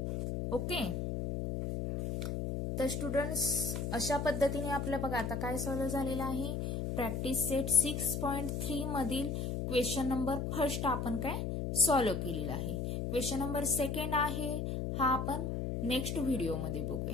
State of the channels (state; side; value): noise; left; hum, 2 dB below the sound